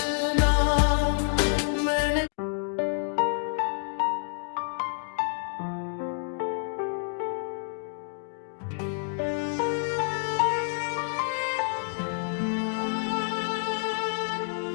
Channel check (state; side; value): silent; right; 59 dB below the other